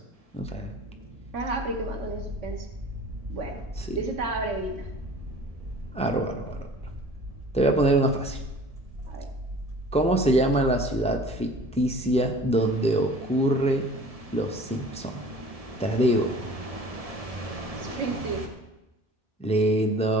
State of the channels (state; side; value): normal; both; correlation 0.46